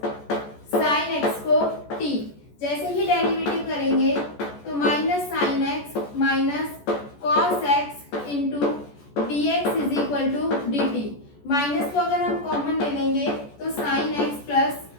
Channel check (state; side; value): late; right; 14 ms